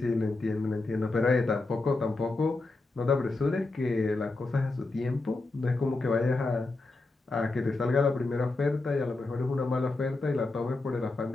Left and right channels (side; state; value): right; quieter; 3.3 dB